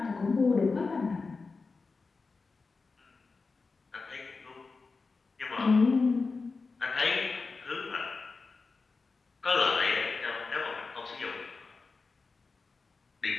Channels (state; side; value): quieter; right; 4.2 dB